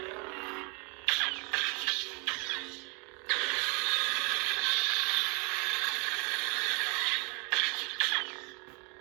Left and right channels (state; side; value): quieter; left; 32.9 dB